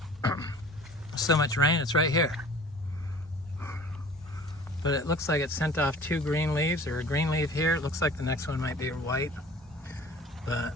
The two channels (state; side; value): normal; both; correlation 0.46